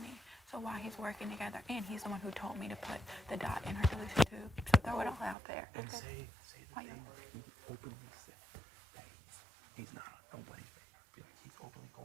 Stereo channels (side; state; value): left; drops out; at 5.4 s